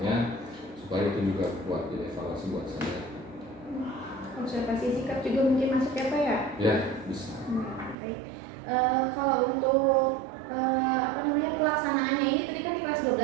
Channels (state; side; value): drops out; left; at 8.0 s